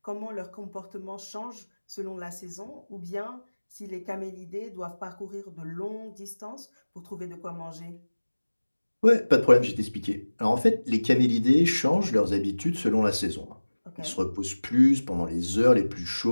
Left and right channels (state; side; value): inverted; both; correlation -1.00